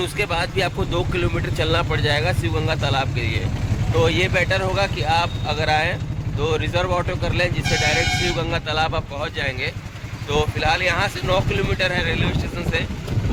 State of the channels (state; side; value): identical; both; correlation 1.00